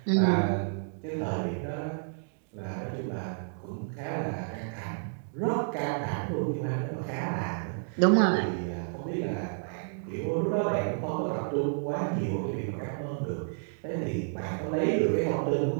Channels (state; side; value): silent; left; digital silence